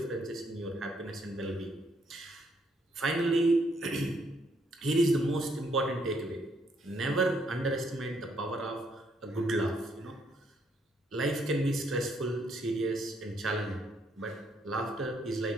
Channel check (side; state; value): both; normal; correlation 0.71